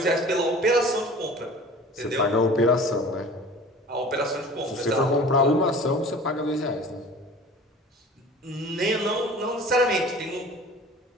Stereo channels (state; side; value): normal; both; correlation 0.43